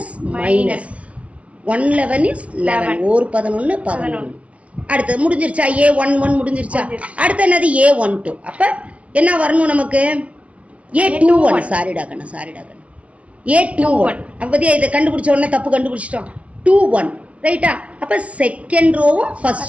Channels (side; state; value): left; late; 0.066 ms